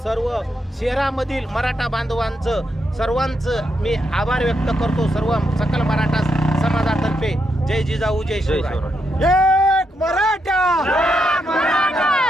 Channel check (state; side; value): normal; both; correlation 0.81